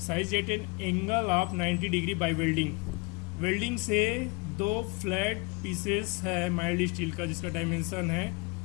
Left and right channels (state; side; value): quieter; right; 28.8 dB